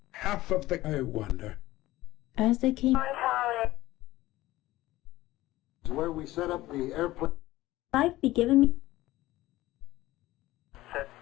half of the. I wonder. as they came. Is where we set up the airplane. life be given me.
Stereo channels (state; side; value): quieter; right; 17.0 dB